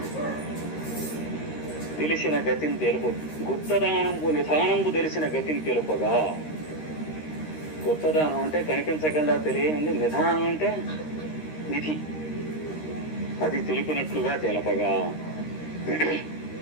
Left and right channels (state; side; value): late; right; 13 ms